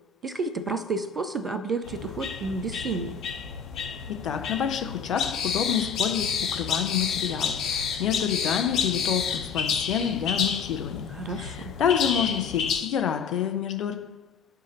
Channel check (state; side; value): quieter; right; 5.8 dB